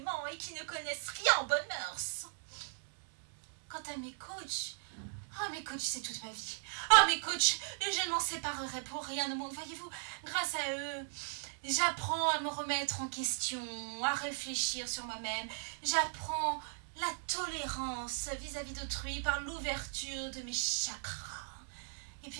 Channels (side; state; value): left; silent; digital silence